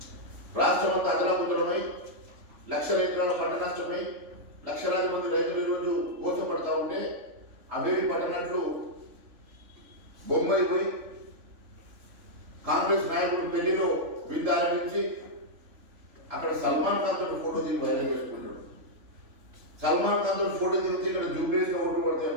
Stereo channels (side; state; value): left; late; 3.4 ms